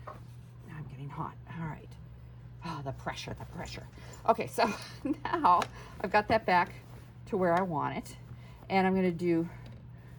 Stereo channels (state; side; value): identical; both; correlation 1.00